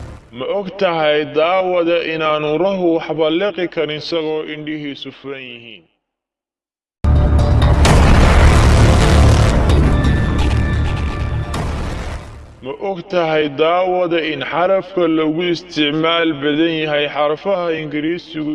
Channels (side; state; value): both; identical; correlation 1.00